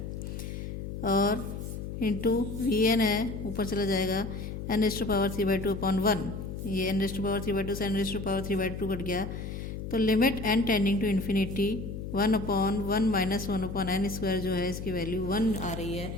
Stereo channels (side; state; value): left; noise; hum, 7 dB below the sound